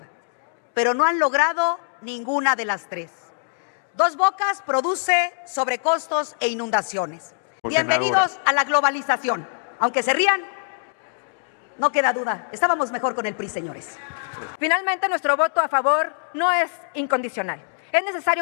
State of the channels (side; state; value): right; silent; digital silence